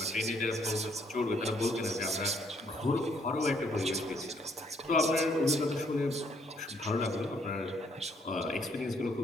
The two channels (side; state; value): both; normal; correlation 0.68